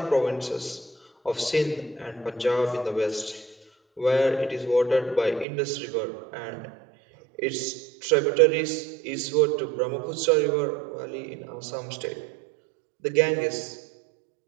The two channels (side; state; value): left; drops out; at 5.5 s